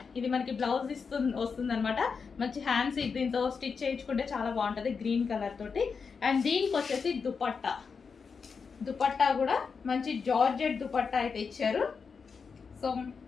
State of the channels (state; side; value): quieter; right; 5.5 dB